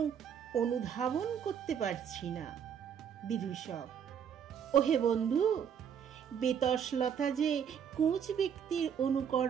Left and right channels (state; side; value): quieter; left; 8.0 dB